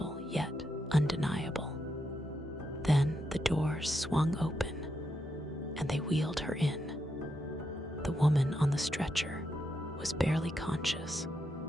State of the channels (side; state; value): both; normal; correlation 0.83